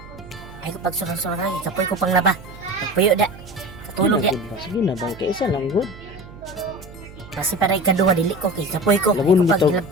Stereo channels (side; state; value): right; noise; hum, 18 dB below the sound